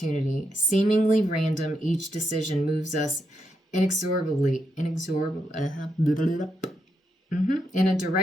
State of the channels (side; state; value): both; normal; correlation 0.82